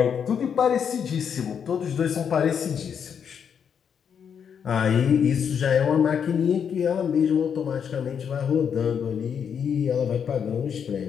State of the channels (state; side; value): quieter; right; 7.5 dB